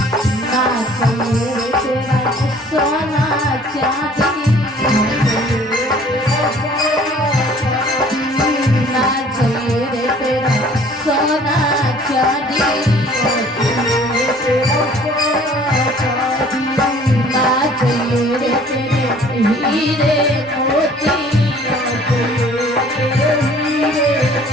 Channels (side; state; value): both; normal; correlation 0.54